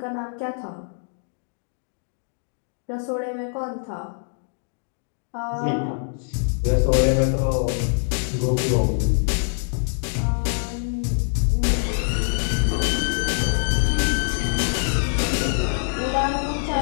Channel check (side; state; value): right; silent; digital silence